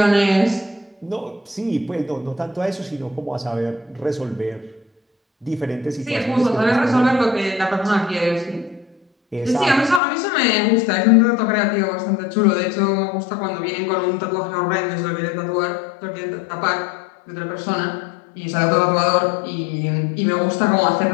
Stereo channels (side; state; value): right; drops out; at 10.0 s